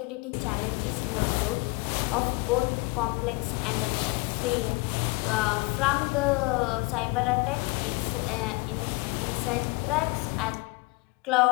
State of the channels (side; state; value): right; quieter; 25.8 dB